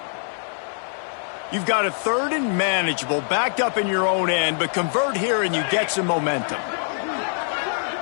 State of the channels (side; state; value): right; silent; 63 dB below the other